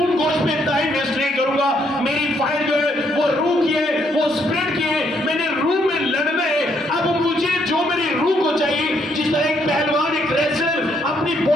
गोश्त पे टाइम वेस्ट नहीं करूंगा। मेरी फाइट जो है वो रूह की है, वो स्पिरिट की है, मैंने रूह में लड़ना है। अब मुझे जो मेरी रूह को चाहिए, जिस तरह एक पहलवान एक रेसलर अपनी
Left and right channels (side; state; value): both; normal; correlation 0.72